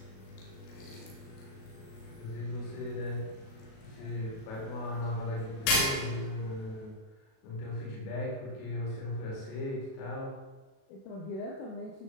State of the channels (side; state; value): right; late; 37 ms